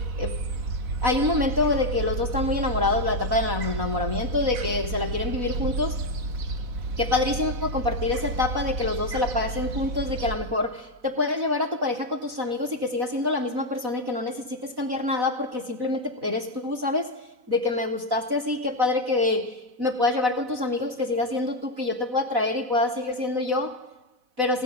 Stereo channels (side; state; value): left; late; 4.0 ms